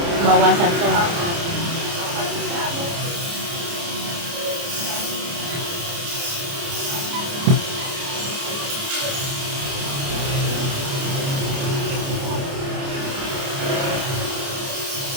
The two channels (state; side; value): late; left; 29 ms